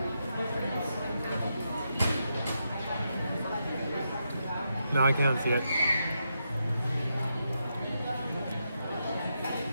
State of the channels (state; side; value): inverted; both; correlation -0.84